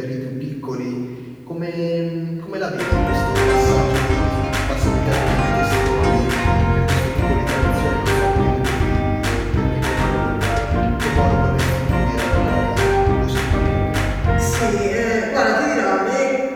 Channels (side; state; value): both; identical; correlation 1.00